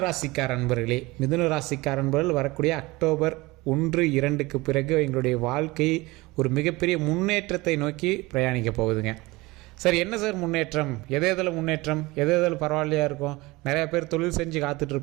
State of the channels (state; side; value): quieter; left; 22.0 dB